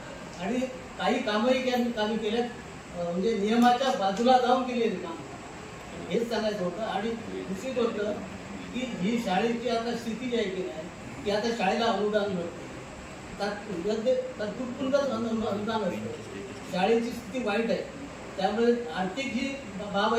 आणि काही कामही कामी केल्यात म्हणजे नियमाच्या बाजूला जाऊन केलेली कामं हेच सांगायचं होतं. आणि दुसरी गोष्ट की ही शाळेची आता स्थिती जी आहे की नाही की आता शाळेला अनुदान मिळतं तात्पुरतं अनुदान असतं. शाळेची स्थिती वाईट आहे त्यामुळे आर्थिक जी बाब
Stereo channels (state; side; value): identical; both; correlation 1.00